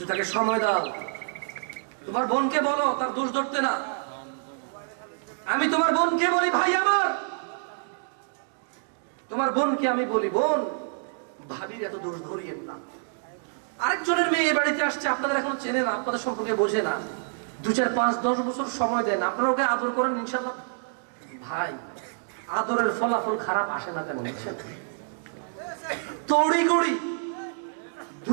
তাকে সময় দাও। তোমার বোনকে বলো তার দোষ ধরতে না। আমি তোমার বোনকে বলি ভাই আমার, তোমার বোনকে আমি বলি বোন, ভাবির এত দোষ ধরিয়েন না। আরেকজনের মেয়ে বাড়িতে আসছে, আপনাদের এখনো চেনে না, আপনাদের সম্পর্কে বোঝে না, 2, 4, 5, 10 বছর সময় দেন, আপনারা ওকে আদর করেন, ইনশাআল্লাহ ভাই আদরের ফলাফল খারাপ আসে না তেমন। তড়িঘড়ি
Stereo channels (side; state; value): left; silent; digital silence